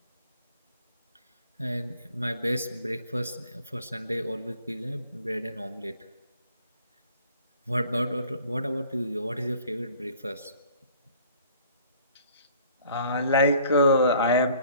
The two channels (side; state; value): both; inverted; correlation -0.54